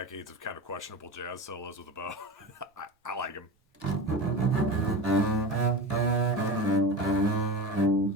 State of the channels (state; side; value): normal; both; correlation 0.28